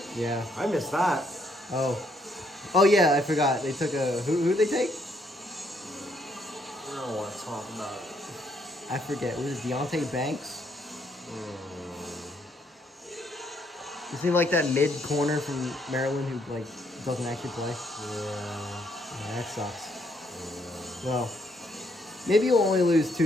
Yeah. I missed that. Oh yeah, I forgot. They took a who'd they take? I don't want to talk about it. I forget. Was it Deontay Banks? Is he like that mid corner from Maryland who like doesn't actually play? Yeah, that sucks. Well, maybe you'll only lose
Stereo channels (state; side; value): normal; both; correlation 0.71